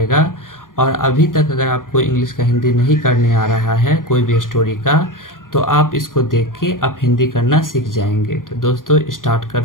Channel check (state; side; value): late; right; 0.90 ms